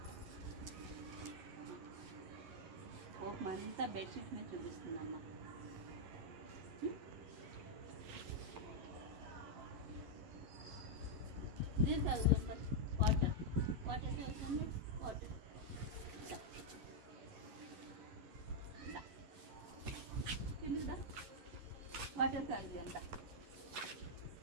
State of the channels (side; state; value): left; late; 11 ms